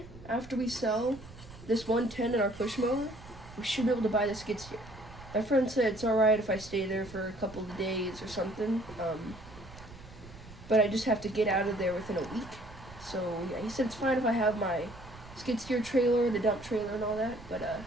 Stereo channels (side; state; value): right; noise; rumble, 18 dB below the sound